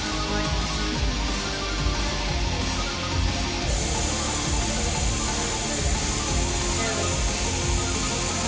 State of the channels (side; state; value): both; identical; correlation 1.00